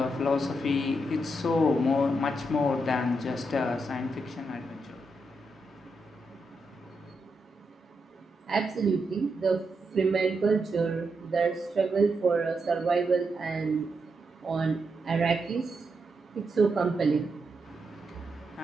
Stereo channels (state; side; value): normal; both; correlation 0.83